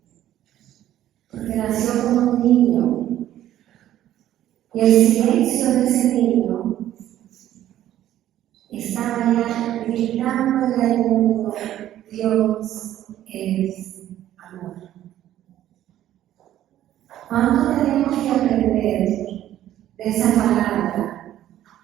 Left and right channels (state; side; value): quieter; left; 12.5 dB